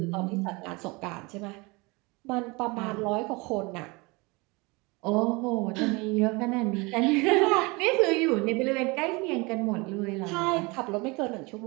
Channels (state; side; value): quieter; left; 26.1 dB